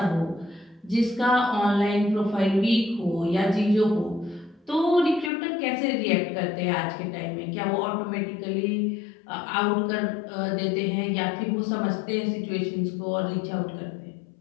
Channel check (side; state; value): right; drops out; at 5.3 s